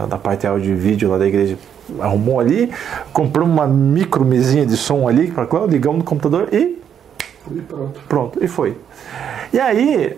parte áudio e vídeo lá da igreja, arrumou ali. Comprou uma micro mesinha de som ali, ligamos no computador e pronto, e foi. E aí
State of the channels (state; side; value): quieter; left; 8.6 dB